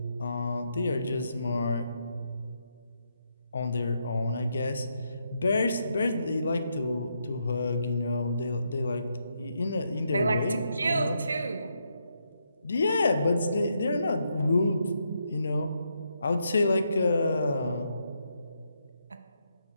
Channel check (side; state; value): both; inverted; correlation -0.80